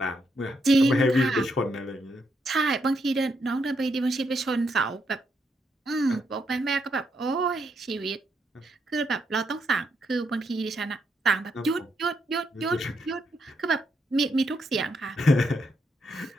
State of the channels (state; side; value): normal; both; correlation 0.79